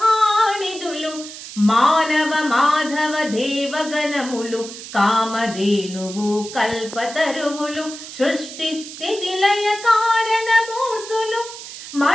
మానవ మాధవ దేవగణములు కామధేనువు కల్పతరువులు సృష్టి స్థితి లయ కారణమూర్తులు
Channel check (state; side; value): noise; right; hiss, 12 dB below the sound